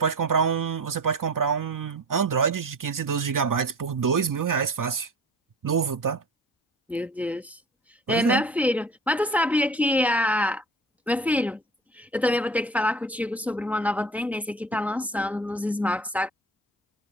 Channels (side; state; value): both; normal; correlation 0.38